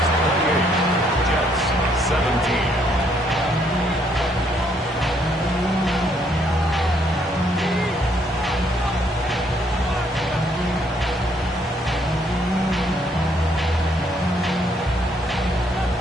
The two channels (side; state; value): both; normal; correlation 0.69